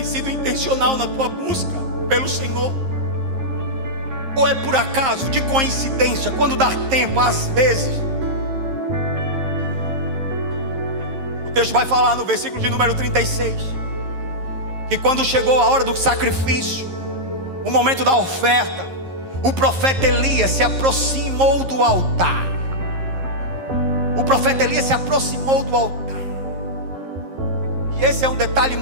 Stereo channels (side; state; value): left; late; 11 ms